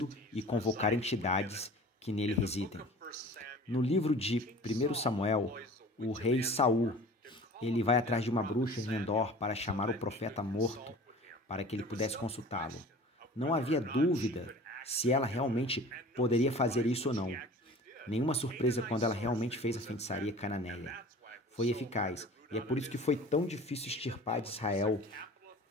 e convocar entidades que nele residem. No livro de 1 Samuel, o rei Saul, ele vai atrás de uma bruxa em Endor para chamar o profeta morto, para que ele pudesse consultá-lo. Não havia dúvida se ela realmente poderia fazer isso ou não. Nenhuma surpresa quando ela realmente fez a feitiçaria cananeia. Foi eficaz, e é por isso que foi tão difícil extirpar de Israel.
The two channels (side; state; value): both; normal; correlation 0.42